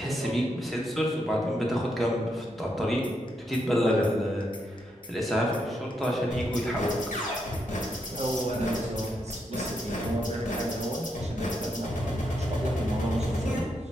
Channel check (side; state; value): both; normal; correlation 0.80